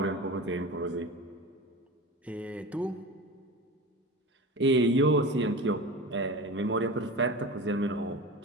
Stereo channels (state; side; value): normal; both; correlation 0.31